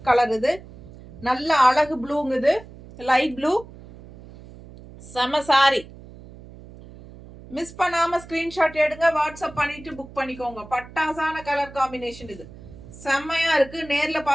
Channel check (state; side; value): noise; right; hum, 18 dB below the sound